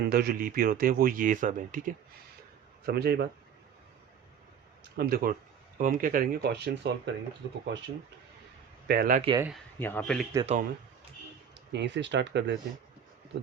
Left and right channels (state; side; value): quieter; left; 8.0 dB